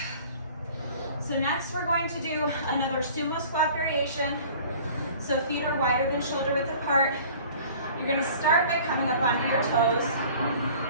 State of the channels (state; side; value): inverted; both; correlation -0.47